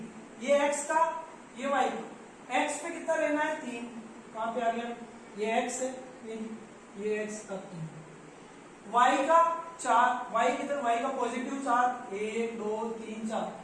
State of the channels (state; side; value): identical; both; correlation 1.00